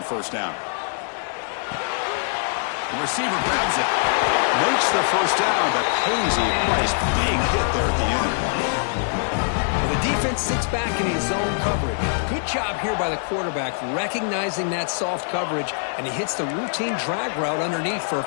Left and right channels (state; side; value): silent; right; digital silence